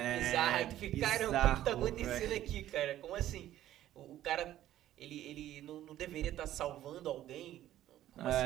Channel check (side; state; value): left; quieter; 13.0 dB